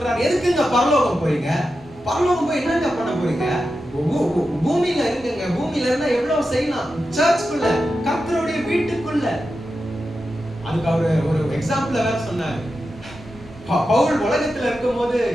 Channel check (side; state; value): both; normal; correlation 0.90